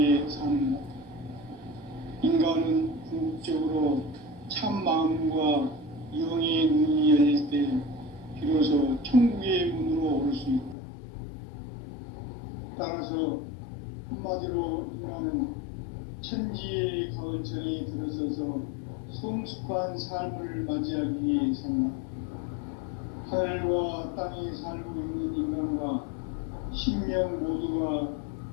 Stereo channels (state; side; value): drops out; right; at 10.8 s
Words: 사는가? 인간은 궁극적으로 참 마음과 영의 눈이 열릴 때 비로소 천국의 문으로 오를 수 있다. 따라서 한마디로 인간은 천지의 가을철에 들어서서 성숙한 삶을 맞이하기 위해 산다. 하늘과 땅에 살고 있는 인간과 신명 모두가